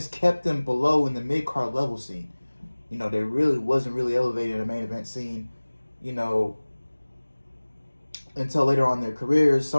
kept them below in the mid-card level scene. You know, they really wasn't really elevated in the main event scene, you know, until later on in their careers.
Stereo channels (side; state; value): both; inverted; correlation -1.00